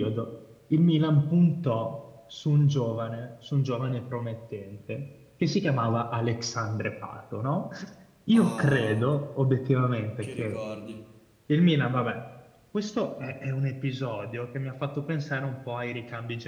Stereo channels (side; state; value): both; identical; correlation 1.00